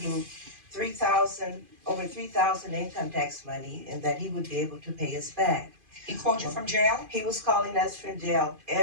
over 3,000 income tax money, and that he would be able to pay us back. He called you from jail? He was calling us from jail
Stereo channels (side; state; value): left; late; 2.5 ms